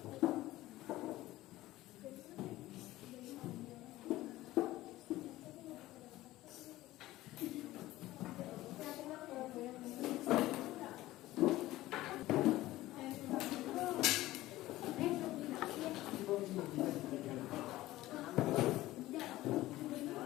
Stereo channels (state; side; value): quieter; right; 16.6 dB